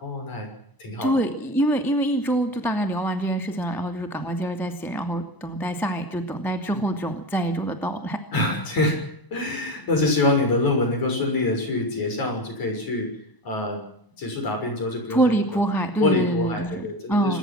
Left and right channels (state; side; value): late; right; 1.0 ms